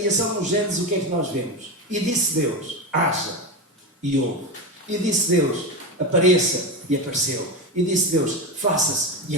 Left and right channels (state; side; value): normal; both; correlation 0.18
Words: no Gênesis, o que é que nós vemos? E disse Deus, haja, e houve. E disse Deus, apareça, e apareceu. E disse Deus, faça-se, e